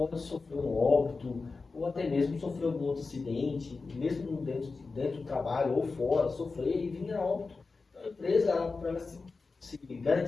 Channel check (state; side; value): quieter; right; 4.1 dB